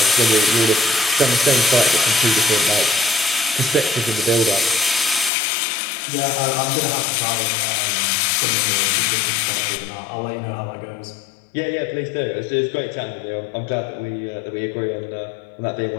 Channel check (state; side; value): drops out; right; at 5.3 s